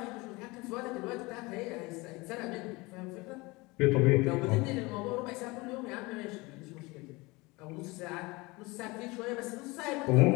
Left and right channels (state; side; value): quieter; right; 23.9 dB